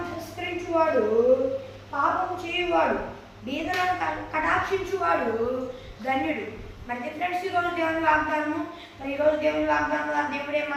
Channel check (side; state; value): both; identical; correlation 1.00